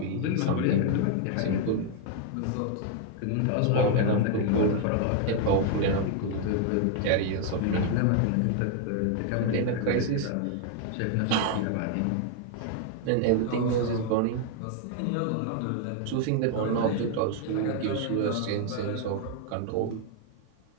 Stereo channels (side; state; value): both; different; correlation 0.00